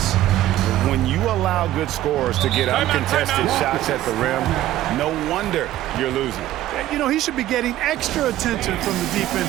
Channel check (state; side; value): quieter; left; 14.0 dB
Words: When you allow good scorers to get uncontested shots at the rim, no wonder you're losing. You know, he should be getting extra attention from the